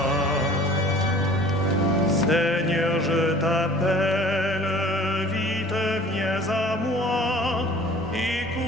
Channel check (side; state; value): both; normal; correlation 0.48